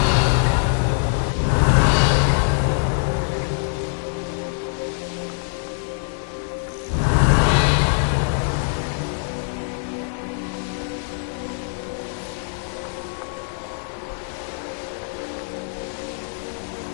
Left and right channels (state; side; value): silent; right; 63 dB below the other